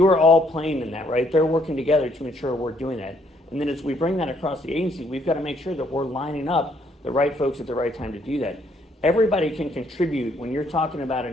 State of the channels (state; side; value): normal; both; correlation 0.69